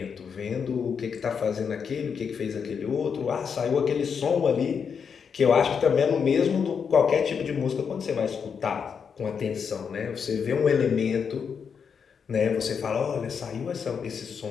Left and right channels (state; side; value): quieter; right; 6.5 dB